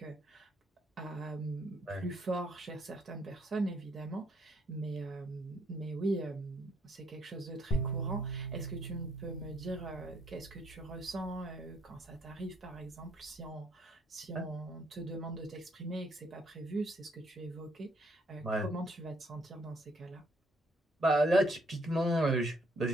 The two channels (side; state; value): both; normal; correlation 0.69